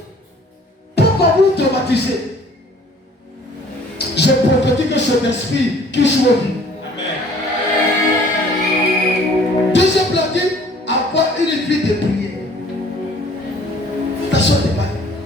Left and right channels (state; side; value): normal; both; correlation 0.54